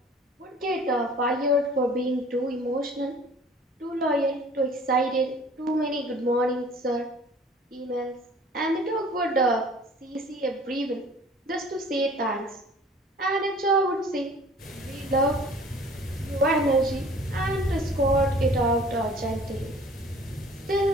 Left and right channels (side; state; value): both; normal; correlation 0.49